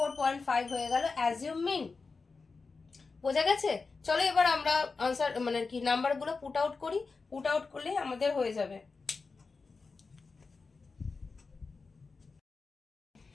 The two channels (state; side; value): quieter; right; 4.3 dB